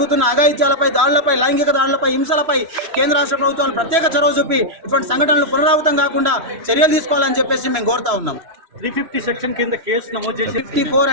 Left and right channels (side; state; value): left; late; 3.0 ms